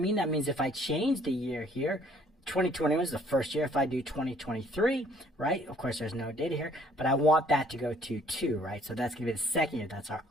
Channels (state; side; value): normal; both; correlation 0.60